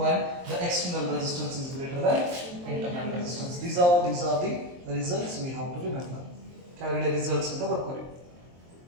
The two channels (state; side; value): late; left; 23 ms